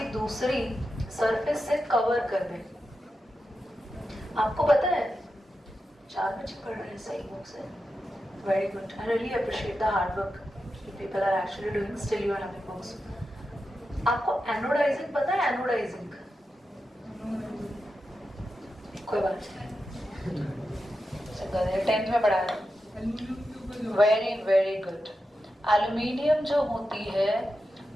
दूसरी surface से cover कर दें, आपको पता है 4 बच्चे पढ़ रहे हैं सही बुक से, very good. I really appreciate the hard work people are actually doing, still you are having books. आपको एनोडाइजिंग पता है? एनोडाइजिंग कोई बात नहीं, 10th में पढ़ाया, वेरी वेरी गुड। एल्यूमिनियम जो होती है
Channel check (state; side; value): normal; both; correlation 0.90